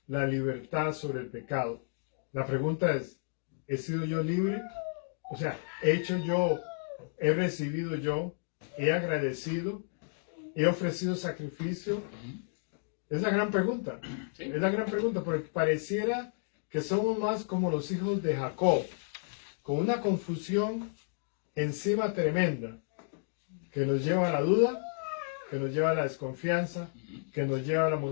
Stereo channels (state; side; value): silent; right; digital silence